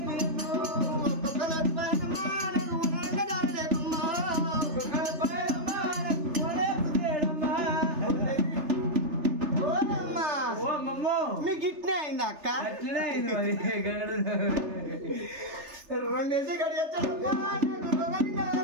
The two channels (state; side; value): late; left; 3.3 ms